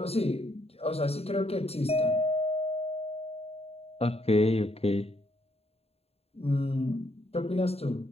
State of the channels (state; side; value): late; right; 0.29 ms